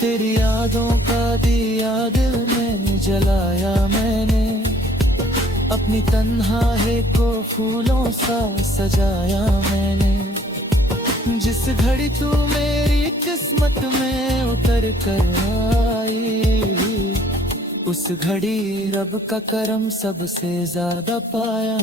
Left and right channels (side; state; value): both; normal; correlation 0.59